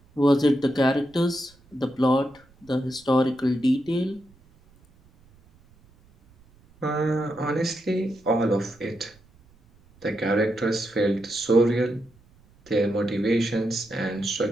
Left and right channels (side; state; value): right; noise; rumble, 29 dB below the sound